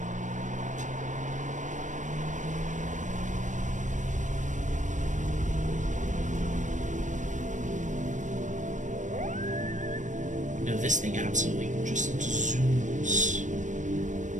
This thing absolutely just zooms.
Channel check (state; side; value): late; left; 0.36 ms